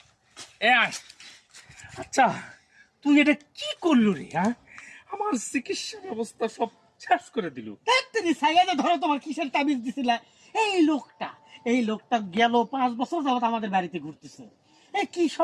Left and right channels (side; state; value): both; identical; correlation 1.00